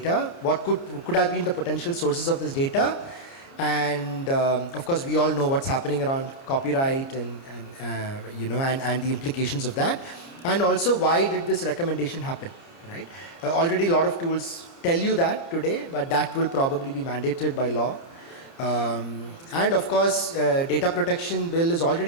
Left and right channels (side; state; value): right; late; 29 ms